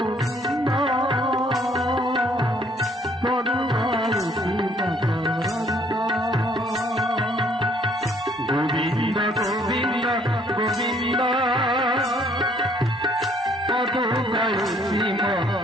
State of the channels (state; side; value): normal; both; correlation 0.62